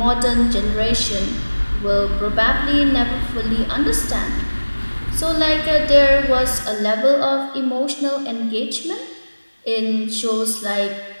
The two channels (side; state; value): both; inverted; correlation -1.00